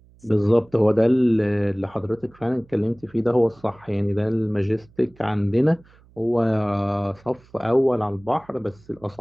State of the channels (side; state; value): right; noise; hum, 28 dB below the sound